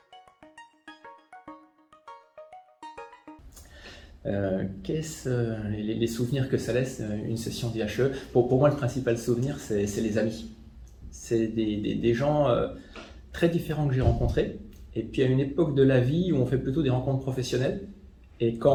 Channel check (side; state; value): both; identical; correlation 1.00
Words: Les souvenirs que ça laisse une session d'IHE? Pour moi, le principal souvenir, c'est les amis. C'est des gens très différents que j'ai rencontrés. Et puis à une époque de la vie où on fait plutôt des rencontres professionnelles. Et